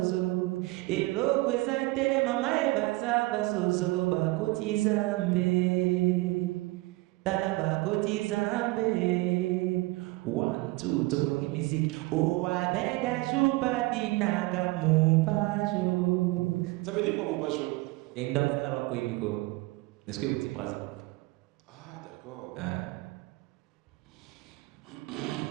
Elokwezate mamae baza basozo. Bakoti zambe. Tala bakoti zambe. 1, 2, tokologi musique. Oh, abega juba dinaga mubajo. Ça veut dire quoi mon bacho? Et dans ça, alors, Miko. Est-ce que vous dites présent? Ah, d'accord.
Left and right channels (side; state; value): left; quieter; 22.0 dB